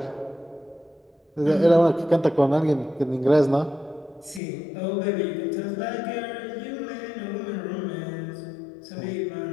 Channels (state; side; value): drops out; right; at 4.4 s